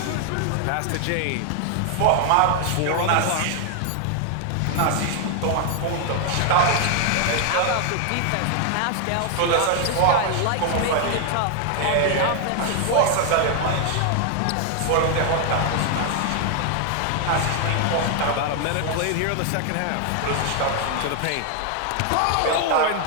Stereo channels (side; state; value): both; different; correlation 0.00